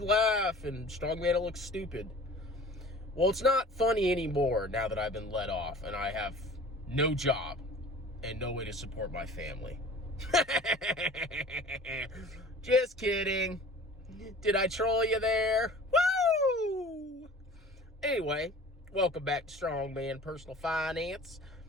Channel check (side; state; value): both; normal; correlation 0.44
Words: laugh and Strongman will look stupid. Well, it's not funny anymore now that I've been let off and I have no job and no way to support my family. Just kidding. Did I troll you there? Woo! Anyway, welcome back to Strongman Personal Finance.